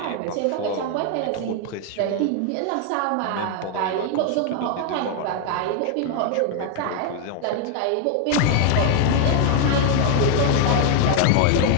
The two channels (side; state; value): both; different; correlation 0.00